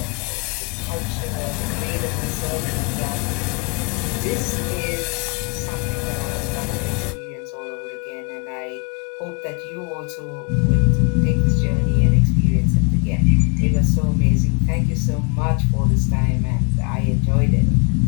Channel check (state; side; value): quieter; right; 35.2 dB